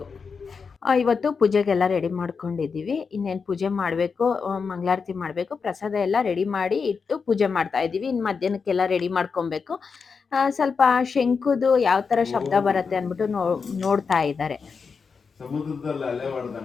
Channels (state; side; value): quieter; right; 5.4 dB